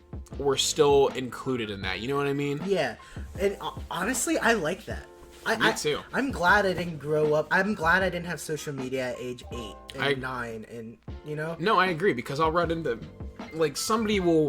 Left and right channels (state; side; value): identical; both; correlation 1.00